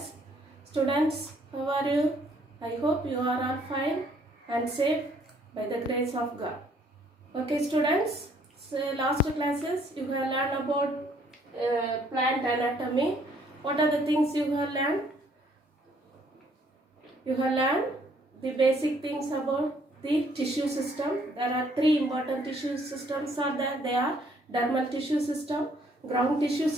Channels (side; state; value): both; normal; correlation 0.64